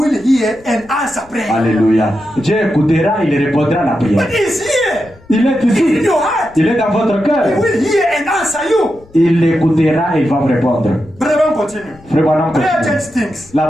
hear and answer prayer. Alléluia. Dieu écoutera, il répondra à la prière. But He's here. Il est He's in ici. your heart. Il est dans votre He cœur. will hear and answer you. Il l'écoutera et il va vous répondre. Brother, on continue. Frère Branham Prayer continue. changes things. La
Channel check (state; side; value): noise; left; rumble, 26 dB below the sound